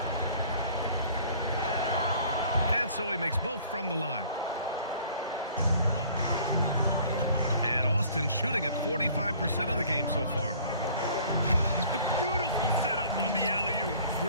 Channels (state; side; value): inverted; both; correlation -0.53